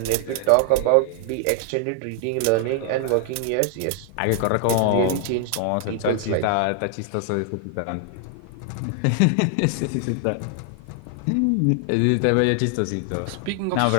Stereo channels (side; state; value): both; different; correlation 0.00